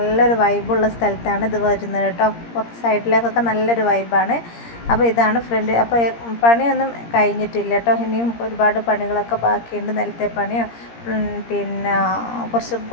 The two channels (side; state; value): right; late; 17 ms